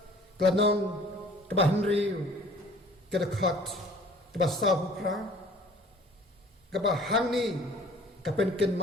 klanon ka Henry ka khat ka sahu pra ka hangni ka pen ken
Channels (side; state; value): both; normal; correlation 0.50